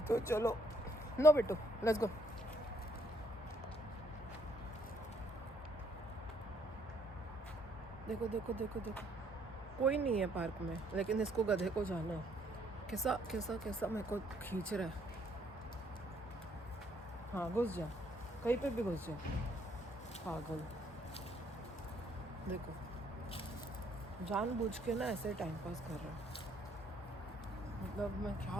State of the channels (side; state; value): both; normal; correlation 0.67